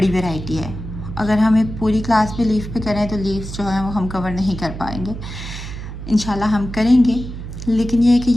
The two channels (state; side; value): noise; right; hum, 9 dB below the sound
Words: वैरायटी है। अगर हम एक पूरी क्लास पे लीव पे करें तो लीव्स जो है वो हम कवर नहीं कर पाएंगे। इंशाल्लाह हम करेंगे, लेकिन ये है कि